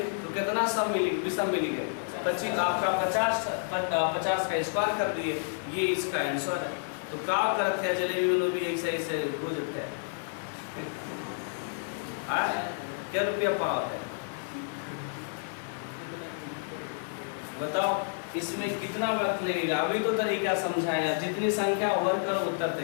तो कितना सम मिली? विषम मिलेगा 25। आपका 50 का स्क्वायर कर दिए, ये इसका आंसर है। तो का करते हैं जलेबी वालों भी ऐसे ऐसे हो जाते हैं। क्या रुपया पाव है बताओ, इसमें कितना वक्त लगेगा? अभी तो तरीका समझाया, जितनी संख्या ओवर करो उत्तर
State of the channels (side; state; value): right; silent; digital silence